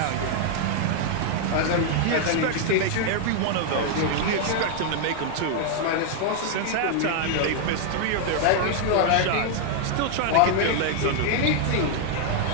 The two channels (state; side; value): different; both; correlation 0.00